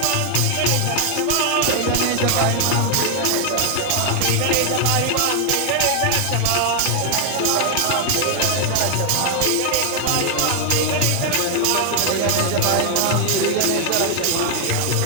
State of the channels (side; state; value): both; different; correlation 0.00